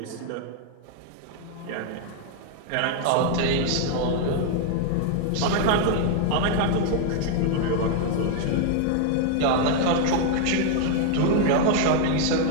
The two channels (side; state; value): both; different; correlation 0.00